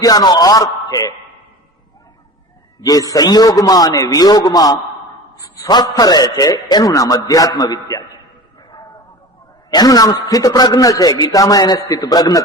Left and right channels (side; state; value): both; normal; correlation 0.35